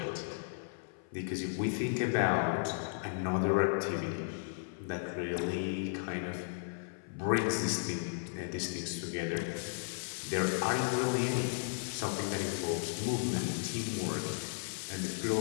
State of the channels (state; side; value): silent; right; 54 dB below the other